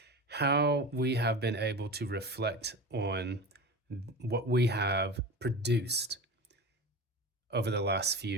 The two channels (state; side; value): normal; both; correlation 0.29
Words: how we have been able to reflect on what we have produced over the last